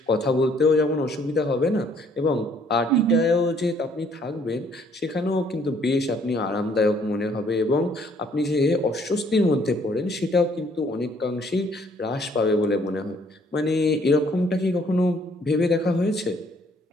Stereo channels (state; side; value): normal; both; correlation 0.63